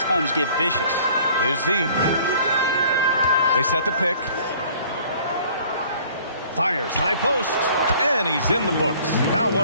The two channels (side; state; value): both; inverted; correlation -0.54